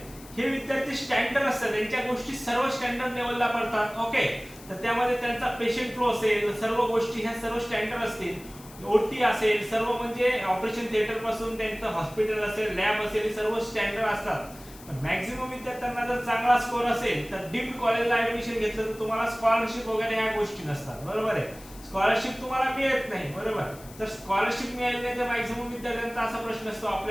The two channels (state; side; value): noise; left; hiss, 20 dB below the sound